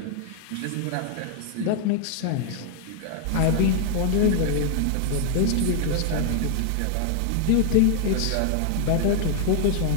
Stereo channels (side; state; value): both; different; correlation 0.00